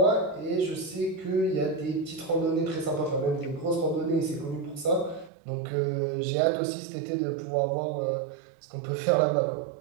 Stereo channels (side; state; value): left; drops out; at 5.3 s